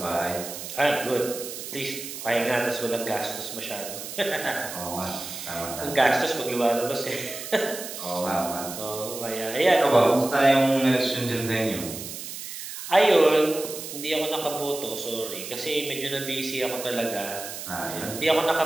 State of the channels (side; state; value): right; noise; hiss, 9 dB below the sound